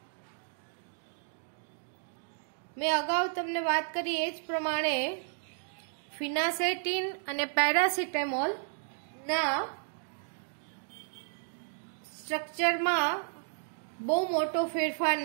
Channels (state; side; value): silent; left; digital silence